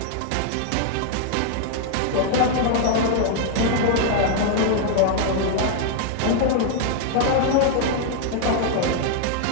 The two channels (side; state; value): both; different; correlation 0.00